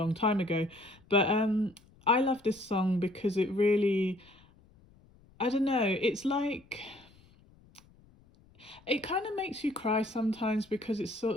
time ago. But I love this song because it really, I don't know, it's like it kind of makes you cry sometimes because it's sort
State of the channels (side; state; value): left; noise; rumble, 28 dB below the sound